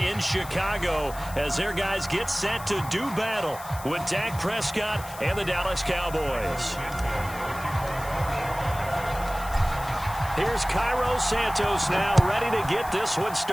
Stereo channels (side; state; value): left; noise; hiss, 15 dB below the sound